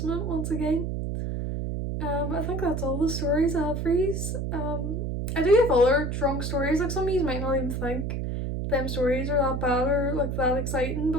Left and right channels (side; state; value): right; noise; hum, 2 dB below the sound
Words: once again. I think that's all the stories I have for yous. I do have other drunk stories, like some of you might not even think them stories are that bad or like that exciting,